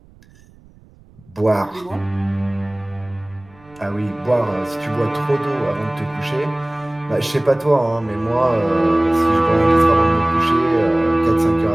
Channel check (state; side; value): noise; right; rumble, 27 dB below the sound